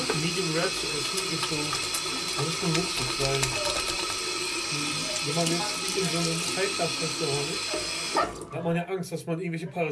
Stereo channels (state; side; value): identical; both; correlation 1.00